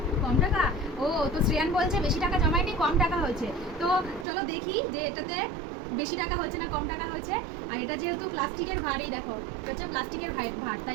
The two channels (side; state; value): left; drops out; at 4.2 s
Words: কম টাকা, ও তো শ্রেয়ান বলছে বেশি টাকা জমায়নি, কম টাকা হয়েছে। তো চলো দেখি যে এটাতে বেশি টাকা হয়েছে না কম টাকা হয়েছে। আর এটা যেহেতু প্লাস্টিকের ভার, এই দেখো এটা হচ্ছে প্লাস্টিকের ভার,